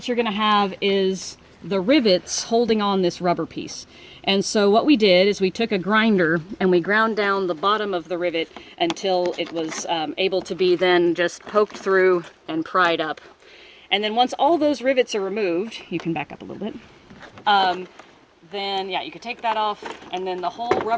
you're going to have is the rivets holding on this rubber piece. And so what we did is we took a grinder and we ground down the bottom of the rivet until it was able to be then just poked through and pried up. And then once all those rivets are removed, you can back up a little bit, then yeah, you can take that off, and then the whole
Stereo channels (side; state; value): both; identical; correlation 1.00